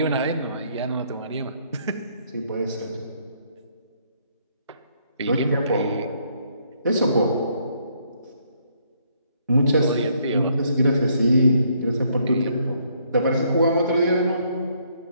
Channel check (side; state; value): both; inverted; correlation -0.69